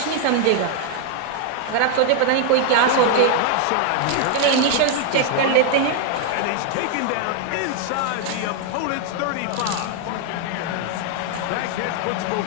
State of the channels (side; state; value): both; different; correlation 0.00